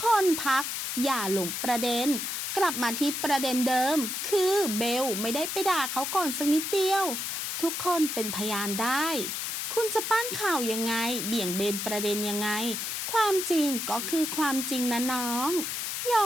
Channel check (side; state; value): left; noise; hiss, 3 dB below the sound